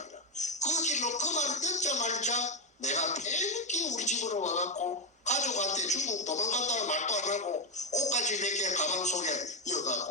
그 길로 그 말을 듣자마자 내가 팬기 우리 집으로 와갖고 가족한테 중국 도망간다는 말도 안 하고 옷까지 몇 개 가방 속에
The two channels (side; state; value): both; normal; correlation 0.08